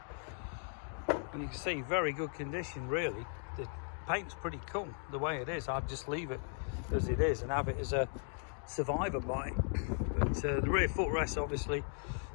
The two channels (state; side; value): silent; right; 53 dB below the other